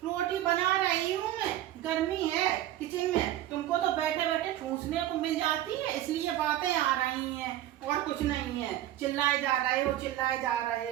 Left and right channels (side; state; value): left; quieter; 13.3 dB